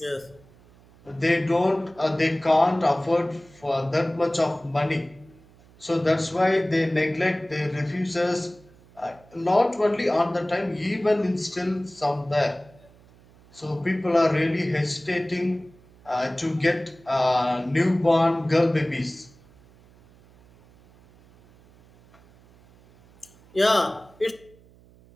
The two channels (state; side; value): noise; right; hum, 27 dB below the sound